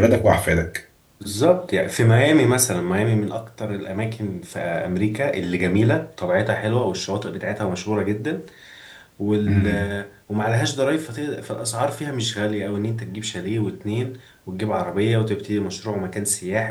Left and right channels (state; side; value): identical; both; correlation 1.00